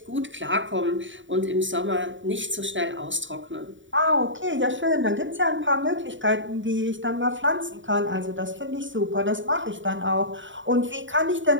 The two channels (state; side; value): late; left; 0.55 ms